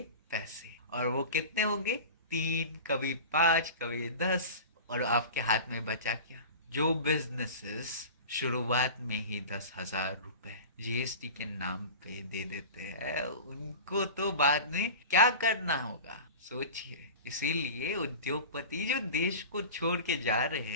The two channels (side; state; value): both; inverted; correlation -0.34